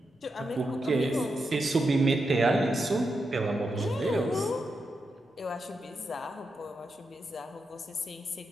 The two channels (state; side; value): normal; both; correlation 0.86